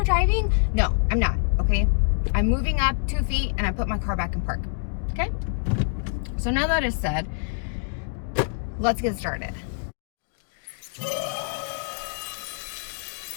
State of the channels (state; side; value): silent; right; digital silence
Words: driving? No, I'm not, okay? I'm moving up 2 feet and I put my car back in park, okay? So now that is said, let's get started.